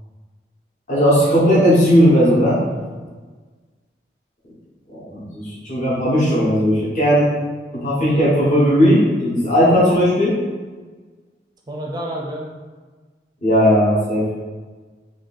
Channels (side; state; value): both; normal; correlation 0.61